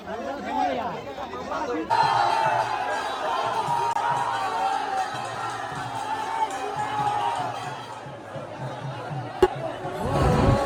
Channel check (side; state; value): both; identical; correlation 1.00